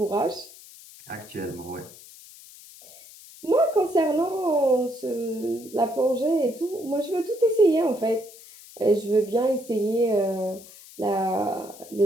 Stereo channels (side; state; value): left; noise; hiss, 20 dB below the sound